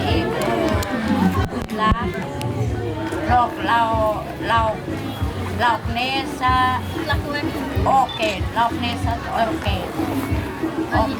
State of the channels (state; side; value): identical; both; correlation 1.00